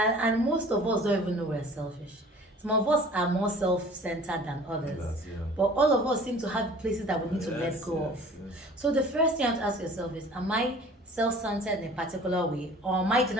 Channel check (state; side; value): normal; both; correlation 0.47